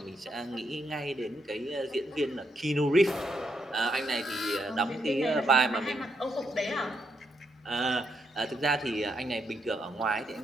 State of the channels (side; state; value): both; normal; correlation 0.79